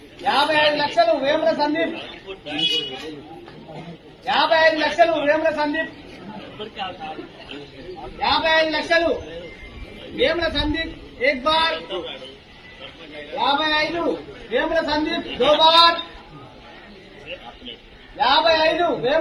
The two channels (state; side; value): identical; both; correlation 1.00